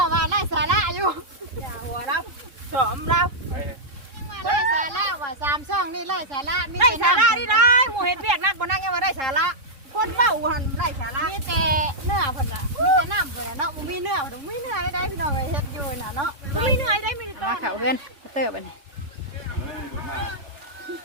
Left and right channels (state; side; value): late; left; 3.7 ms